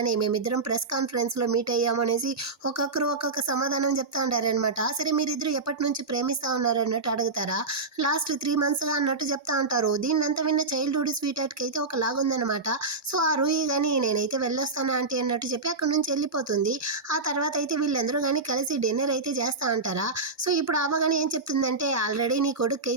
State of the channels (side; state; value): left; quieter; 3.7 dB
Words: మేమిద్దరం ప్రెస్ కాన్ఫరెన్స్లో మీట్ అయ్యాము అనేసి ఒక్కొక్కరు ఒక్కొక్క సమాధానం చెప్తా ఉంటారనమాట. సరే మీరిద్దరు ఎప్పటి నుంచి ప్రేమిస్తూ ఉన్నారు అన్నట్టు అడుగుతారా, లాస్ట్ 3 monthsగా అన్నట్టు చెప్తా ఉంటారు. దీన్నంతా విన్న చైల్డ్హుడ్ స్వీట్ హార్ట్కి అయితే ఒక లాగుందనమాట. సో ఆ రూహి కానీ నేనైతే వెళ్ళొస్తాను ఆంటీ అన్నట్టు చెప్పి అక్కడి నుంచి వెళ్ళిపోతుంది. ఆ తర్వాత అయితే వీళ్ళందరూ కానీ కలిసి డిన్నర్ అయితే చేస్తూ ఉంటారా. సో ఇప్పుడు అవ్వ కానీ ఏం చెప్తుందంటే, ఆల్రెడీ నీ కొడుకు